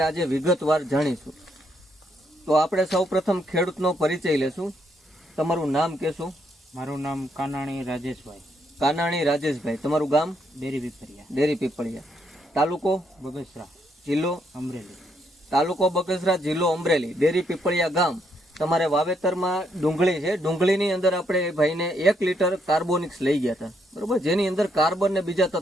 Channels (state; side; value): normal; both; correlation 0.75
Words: આજે વિગતવાર જાણીશું. તો આપણે સૌપ્રથમ ખેડૂતનો પરિચય લેશું. તમારું નામ કહેશો? મારું નામ કાનાણી રાજેશભાઈ. કાનાણી રાજેશભાઈ. તમારું ગામ? ડેરી પીપળિયા. તાલુકો? બગસરા. જિલ્લો? અમરેલી. તાલુકો બગસરા, જિલ્લો અમરેલી, ડેરી પીપળિયા ગામ. તમારે વાવેતરમાં ડુંગળી છે. ડુંગળીની અંદર આપણે એ ભાઈને 1 લીટર કાર્બોનિક્સ લઈ ગયા હતા, બરોબર, જેની અંદર કાર્બન ને બીજા